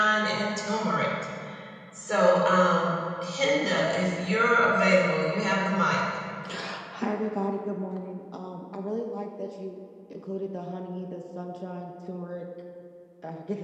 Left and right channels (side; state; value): both; identical; correlation 1.00